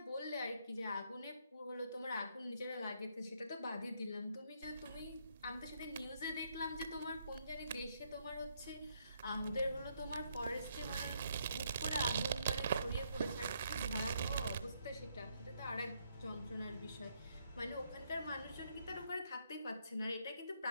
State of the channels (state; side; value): inverted; both; correlation -0.73